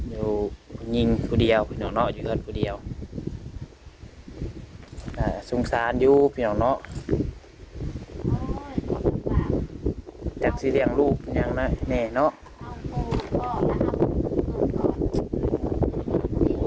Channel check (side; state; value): both; identical; correlation 1.00